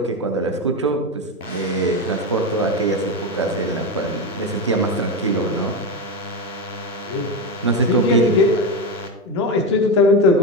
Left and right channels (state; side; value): normal; both; correlation 0.15